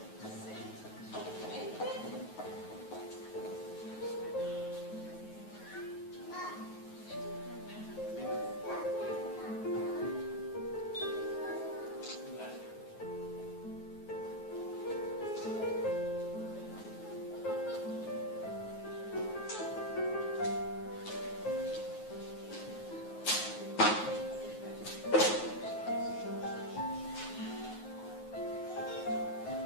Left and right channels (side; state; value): right; late; 9.3 ms